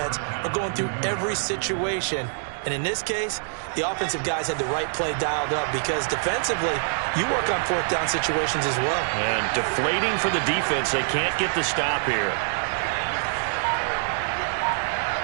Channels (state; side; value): silent; left; digital silence